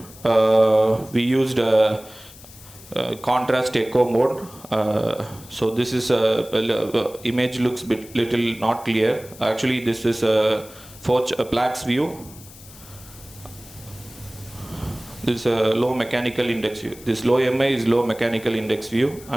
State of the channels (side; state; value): left; noise; hiss, 20 dB below the sound